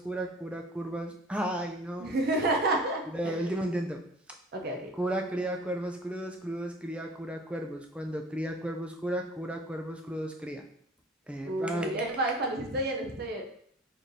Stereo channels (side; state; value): both; normal; correlation 0.46